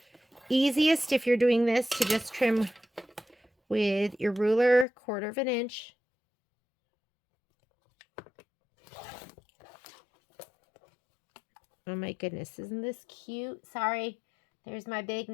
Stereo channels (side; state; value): right; drops out; at 4.9 s